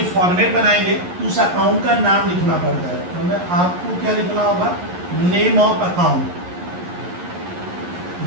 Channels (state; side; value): late; left; 11 ms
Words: फॉर्मेट बनाएंगे तो उस अकाउंट का नाम लिखना पड़ता है। तो मैं आपको क्या लिखना होगा, नेम ऑफ अकाउंट।